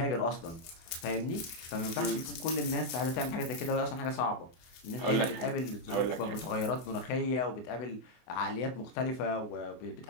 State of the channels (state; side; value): late; right; 24 ms